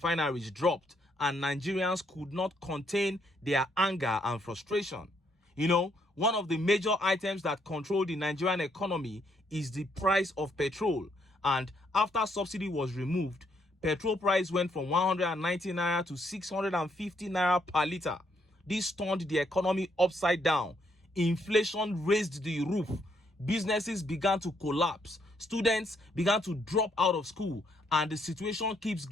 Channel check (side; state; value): both; normal; correlation 0.73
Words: dropped, and Nigerians could not contain their anger and frustration. One of the major items that control the Nigerian economy is the price of petrol. And after subsidy was removed, petrol price went from 190 naira to 650 naira per liter. This turned the economy upside down. Inflation raised the roof. Businesses began to collapse. Students began to drop out of school. And the situation keeps